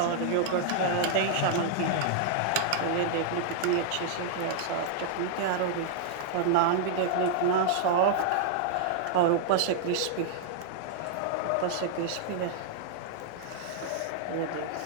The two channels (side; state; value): both; different; correlation -0.01